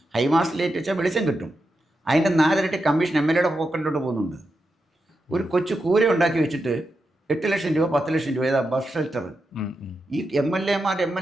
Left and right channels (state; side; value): normal; both; correlation 0.87